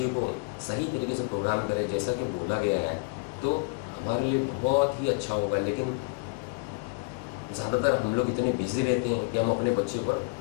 को सही तरीके से प्रोग्राम करें जैसा कि बोला गया है तो हमारे लिए बहुत ही अच्छा होगा। लेकिन ज़्यादातर हम लोग इतने बिजी रहते हैं कि हम अपने बच्चे पर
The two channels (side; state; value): right; quieter; 33.5 dB